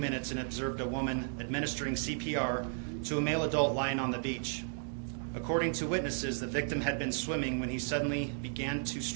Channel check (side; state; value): left; silent; 55 dB below the other